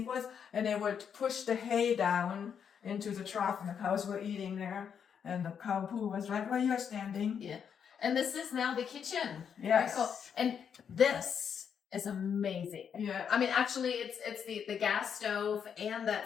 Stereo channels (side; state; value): right; quieter; 7.5 dB